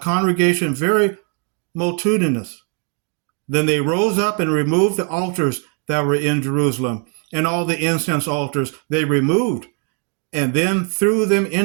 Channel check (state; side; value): quieter; left; 35.7 dB